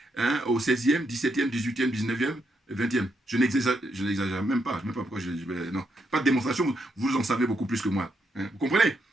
hein, au 16e, 17e, 18e, 19e, 20e. Je n'exagère même pas, je ne sais même pas pourquoi je vais... Non, pas de démonstration, vous en savez beaucoup plus que moi. Hein, vous comprenez?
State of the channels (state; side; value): normal; both; correlation 0.79